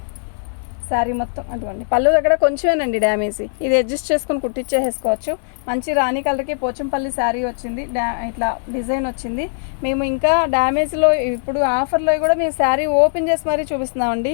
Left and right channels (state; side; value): silent; right; digital silence